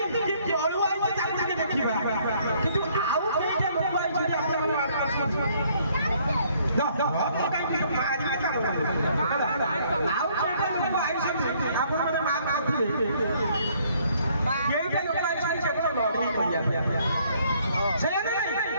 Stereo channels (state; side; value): inverted; both; correlation -0.64